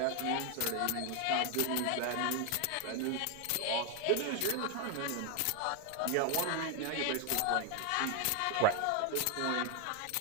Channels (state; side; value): different; both; correlation 0.01